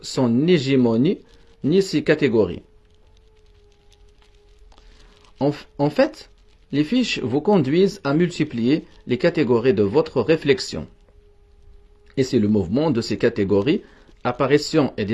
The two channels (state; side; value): identical; both; correlation 1.00